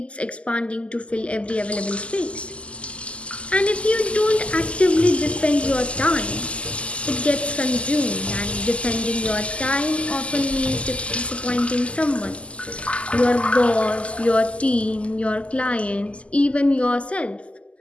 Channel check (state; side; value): late; right; 0.058 ms